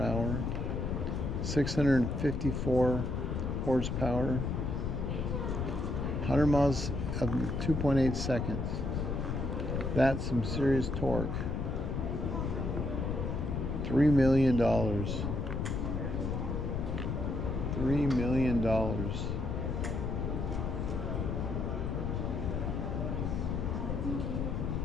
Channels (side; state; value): left; noise; rumble, 1 dB below the sound